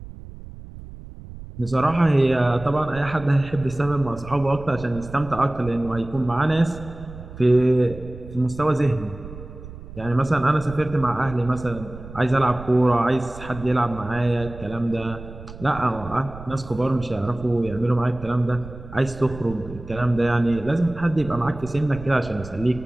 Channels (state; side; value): noise; right; rumble, 14 dB below the sound